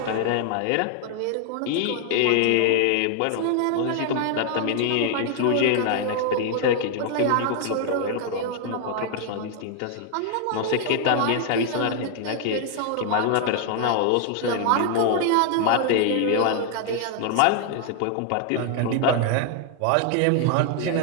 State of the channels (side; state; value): both; different; correlation 0.00